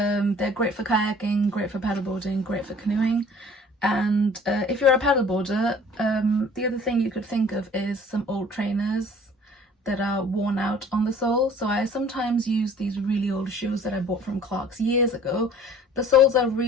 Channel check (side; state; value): both; normal; correlation 0.50